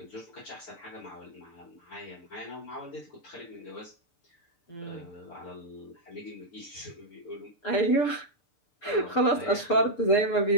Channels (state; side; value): late; right; 6.8 ms